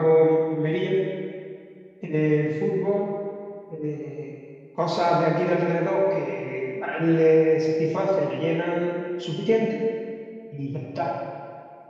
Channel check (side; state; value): both; identical; correlation 1.00